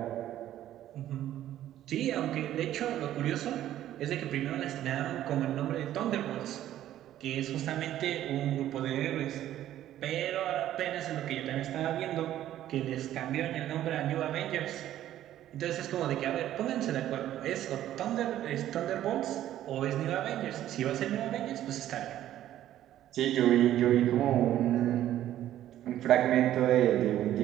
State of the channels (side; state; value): left; quieter; 12.5 dB